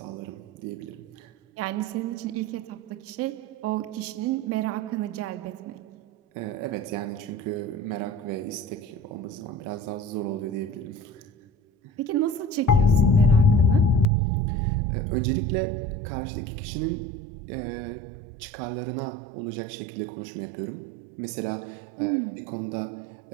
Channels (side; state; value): left; drops out; at 14.1 s